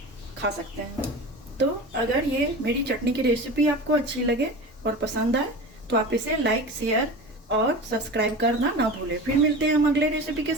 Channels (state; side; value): normal; both; correlation 0.32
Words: खा सकते हैं। तो अगर ये मेरी चटनी की रेसिपी आपको अच्छी लगे और पसंद आए तो आप इसे लाइक, शेयर और सब्सक्राइब करना ना भूलें। फिर मिलते हैं हम अगले रेसिपी के